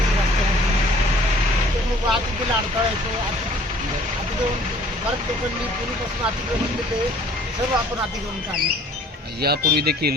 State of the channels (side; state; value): both; normal; correlation 0.54